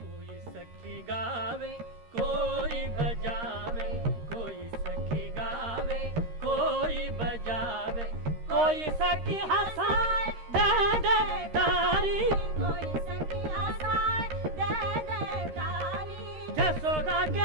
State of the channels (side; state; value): left; late; 13 ms